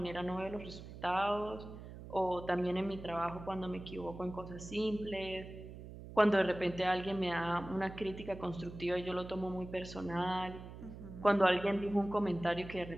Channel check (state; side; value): noise; right; hum, 13 dB below the sound